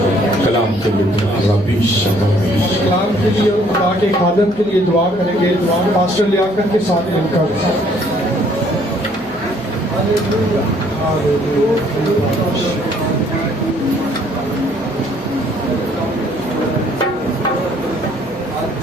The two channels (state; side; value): noise; right; hum, 25 dB below the sound